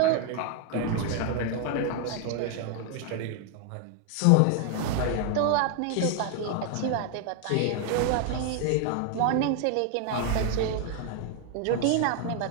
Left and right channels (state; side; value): different; both; correlation 0.00